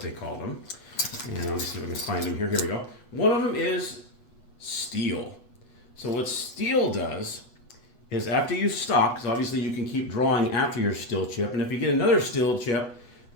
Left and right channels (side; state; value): right; late; 8.2 ms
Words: call them. And let me see if I can find them here. Here we go. One of them is steel. So what steel does is after you stop, because obviously you can keep drawing after your steel chip, and if you get another steel chip,